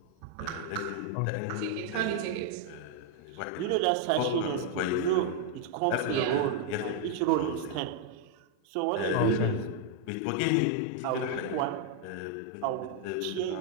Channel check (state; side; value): different; both; correlation 0.00